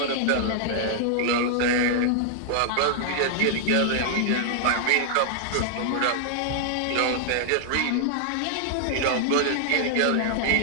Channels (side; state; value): both; different; correlation -0.01